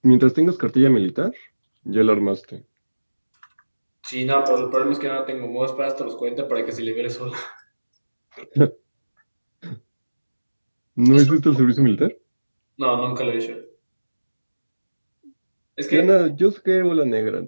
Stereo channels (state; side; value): inverted; both; correlation -1.00